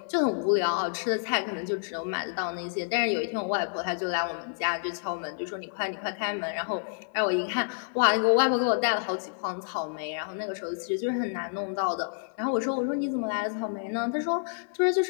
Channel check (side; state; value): right; silent; digital silence